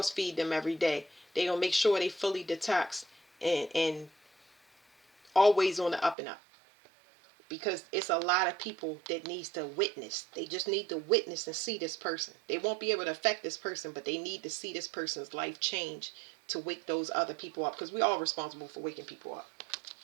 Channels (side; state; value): left; drops out; at 6.2 s